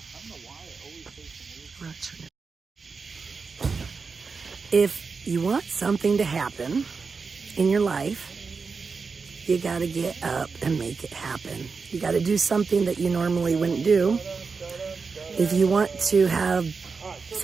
if you want something to happen in your life, you got to get up and make it happen. You got to do something that you normally wouldn't do. If you want to have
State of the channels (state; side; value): quieter; left; 4.9 dB